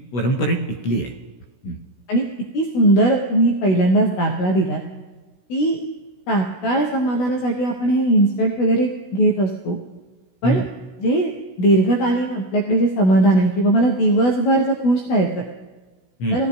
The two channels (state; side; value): late; right; 16 ms